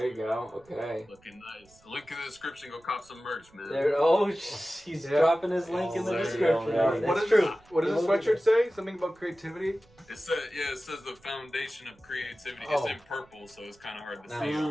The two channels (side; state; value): right; noise; rumble, 29 dB below the sound